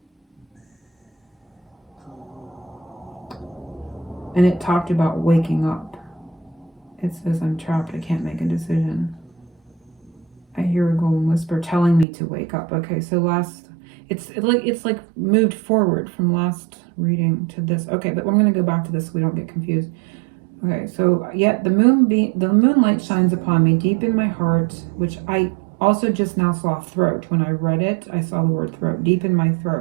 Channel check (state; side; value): drops out; left; at 12.1 s